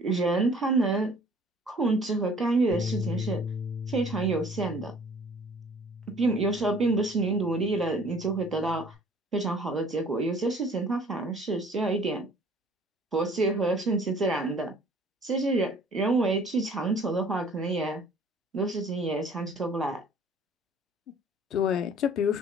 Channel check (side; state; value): both; normal; correlation 0.53